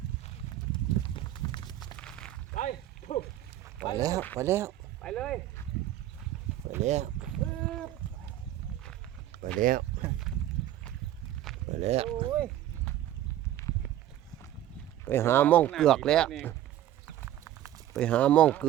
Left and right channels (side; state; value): left; quieter; 12.7 dB